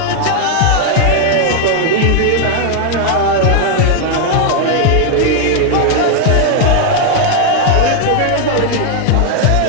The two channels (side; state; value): both; different; correlation 0.00